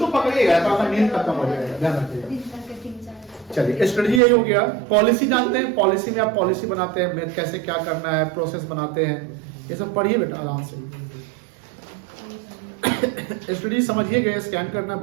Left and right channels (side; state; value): left; drops out; at 4.2 s